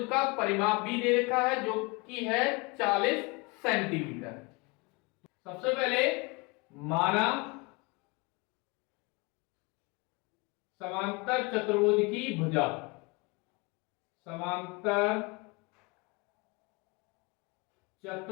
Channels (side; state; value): right; quieter; 27.5 dB